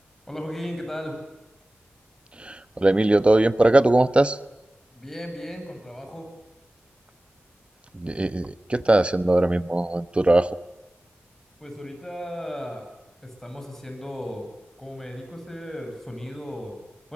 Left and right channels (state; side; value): normal; both; correlation 0.97